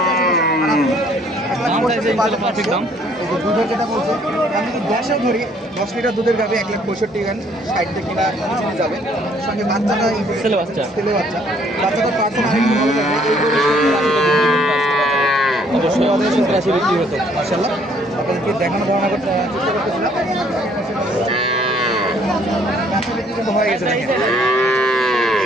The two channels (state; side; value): normal; both; correlation 0.62